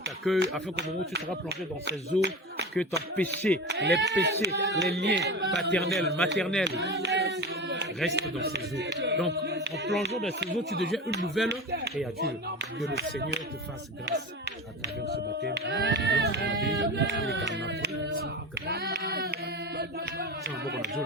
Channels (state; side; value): normal; both; correlation 0.28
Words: t'accueille afin qu'au moment où tu seras plongé dans ces eaux, que ton péché, les liens paternels, maternels, restent dans ces eaux. Donc, en plongeant dans ces eaux, tu deviens une nouvelle créature. Que le Seigneur te fasse grâce à travers ce baptême.